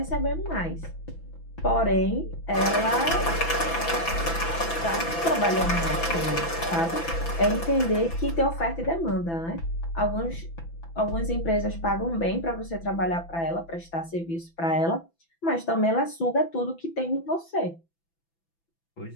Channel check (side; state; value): right; late; 6.0 ms